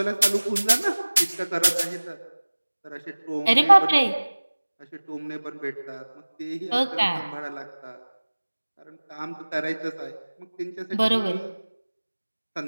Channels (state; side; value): inverted; both; correlation -1.00